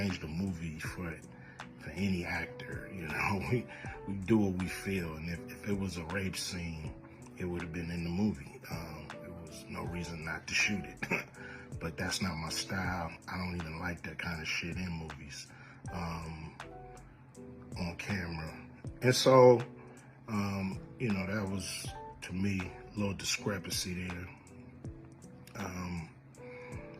the movie for any actor, we do what we feel, and if it was a rape scene, it would have been in the movie. There was no reason not to shoot it, but that's not my style. I don't even like that kind of shit in movies, on camera. And so, that was, to me, a little discrepancy there.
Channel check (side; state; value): both; identical; correlation 1.00